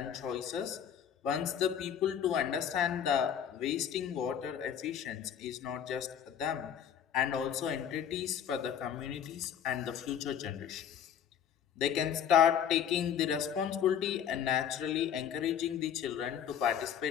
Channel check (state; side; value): quieter; right; 8.8 dB